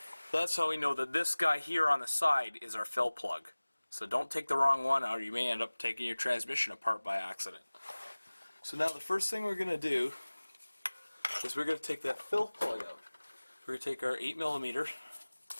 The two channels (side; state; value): both; inverted; correlation -1.00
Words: That's how we know that this guy here on the side is our fill plug. So don't take the wrong one out or you may end up taking your transmission apart by accident. So now the first thing we're going to do is we're going to take that fill plug out. We're going to take our 8 millimeter